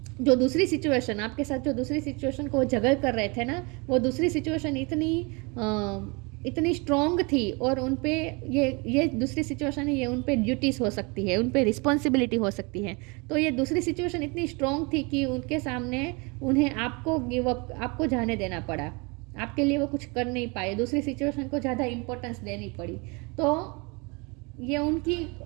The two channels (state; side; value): quieter; left; 29.2 dB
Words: जो दूसरी सिचुएशन आपके साथ जो दूसरी सिचुएशन को जगल कर रहे थे ना, वो दूसरी सिचुएशन इतनी स्ट्रॉन्ग थी और उन पे ये दूसरी सिचुएशन है, ये उन पे ड्यूटीज़ हो सकती है, उन पे रिस्पॉन्सिबिलिटी हो सकती है। तो ये दूसरी सिचुएशन इतनी स्ट्रॉन्ग थी कि उनके सामने उन्हें आपको गिव अप आपको जाने देना पड़ा, आपके लिए वो कुछ कर नहीं पाए, दूसरी सिचुएशन को ज़्यादा इम्पोर्टेंस देनी पड़ी। तो ये उनकी